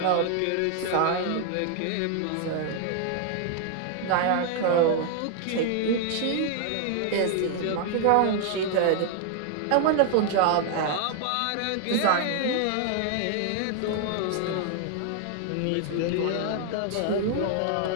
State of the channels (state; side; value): different; both; correlation 0.00